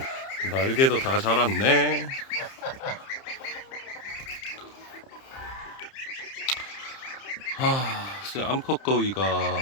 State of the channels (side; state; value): right; late; 30 ms